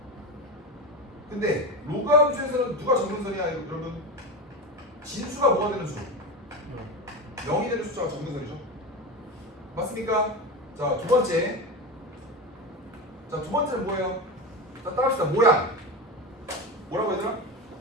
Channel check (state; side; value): normal; both; correlation 0.21